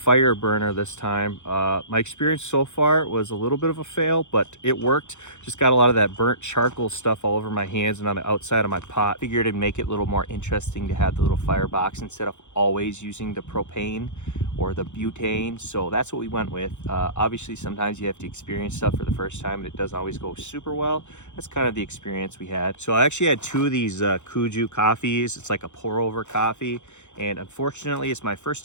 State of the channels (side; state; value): right; late; 0.84 ms